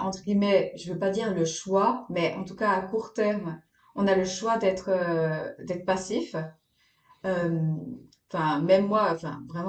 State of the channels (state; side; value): identical; both; correlation 1.00